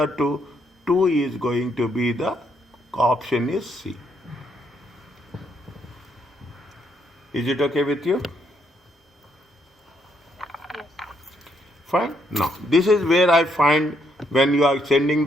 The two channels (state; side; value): normal; both; correlation 0.74